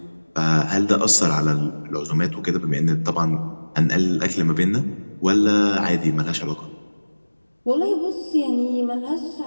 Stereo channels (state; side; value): inverted; both; correlation -1.00